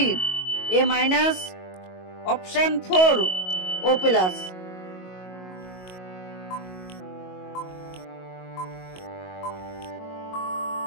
A minus, option 4 O plus.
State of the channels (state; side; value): late; right; 22 ms